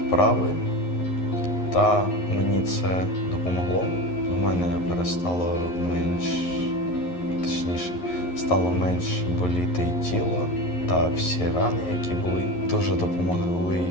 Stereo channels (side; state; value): right; late; 11 ms